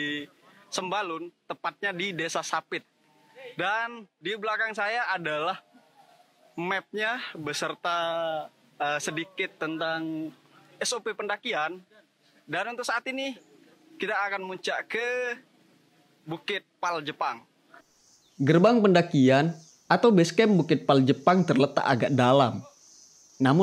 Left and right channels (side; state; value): both; identical; correlation 1.00